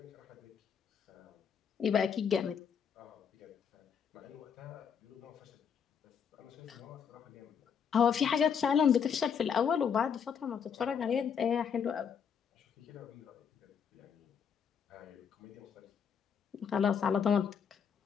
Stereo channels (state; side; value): quieter; right; 7.2 dB